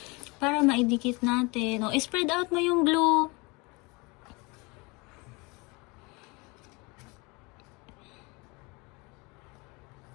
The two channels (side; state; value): right; quieter; 26.9 dB